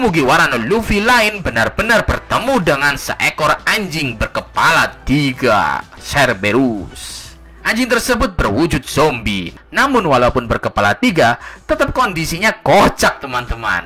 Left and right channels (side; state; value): both; identical; correlation 1.00